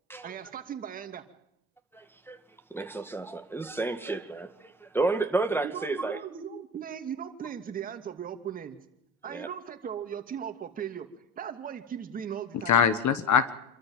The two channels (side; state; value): both; normal; correlation 0.32